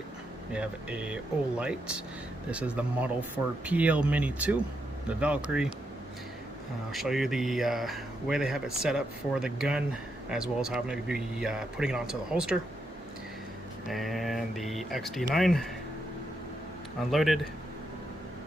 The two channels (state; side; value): normal; both; correlation 0.82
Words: we have a Olight. This is the model for PL Mini 2, the Valkyrie. I'll show you the way they have it set up for the gun, as well as how I'm going to be putting it onto the holster. And the XD9 unloaded,